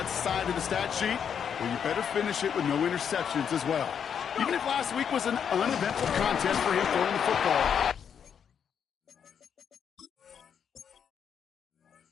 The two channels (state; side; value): quieter; right; 7.7 dB